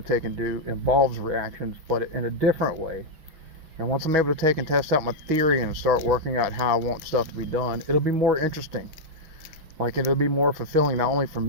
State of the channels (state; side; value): late; left; 6.2 ms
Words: to take and do involves reactions, but in a different way. And once I'm able to take and test out my theory and start working out how I want stuff to be done, it'll be more interesting. Like, it'll be more fulfilling, not only for